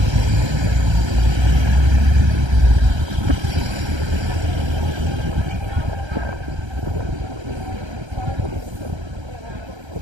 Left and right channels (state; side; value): late; left; 1.3 ms